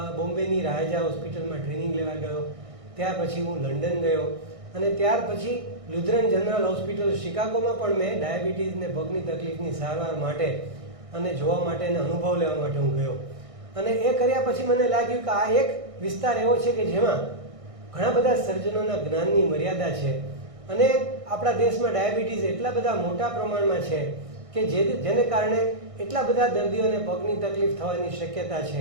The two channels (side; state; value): left; late; 1.6 ms